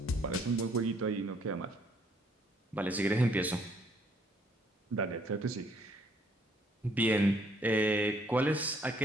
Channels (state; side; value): normal; both; correlation 0.66